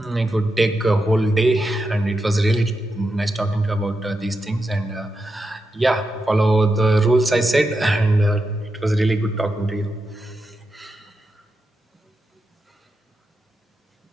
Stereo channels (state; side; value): normal; both; correlation 0.87